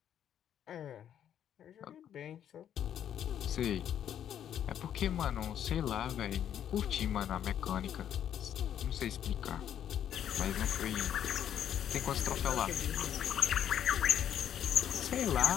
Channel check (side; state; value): right; quieter; 9.8 dB